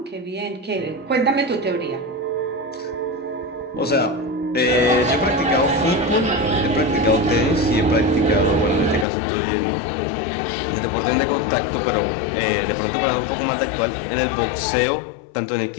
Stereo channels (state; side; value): drops out; right; at 9.1 s